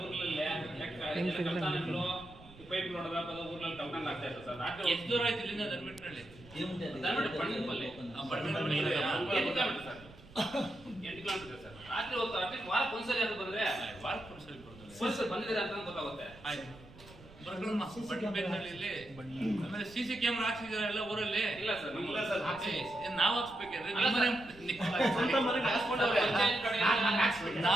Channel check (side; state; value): right; noise; rumble, 21 dB below the sound